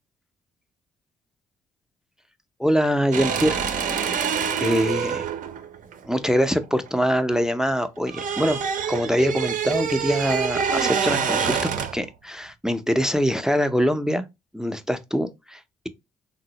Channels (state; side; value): normal; both; correlation 0.76